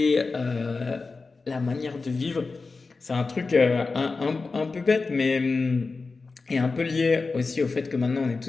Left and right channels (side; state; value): right; quieter; 4.1 dB